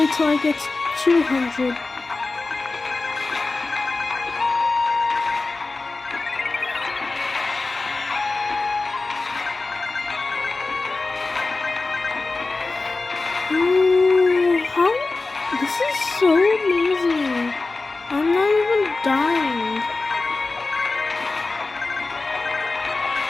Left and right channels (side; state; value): right; quieter; 3.6 dB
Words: till I get to 200. This is so amazing. I'm not even dying.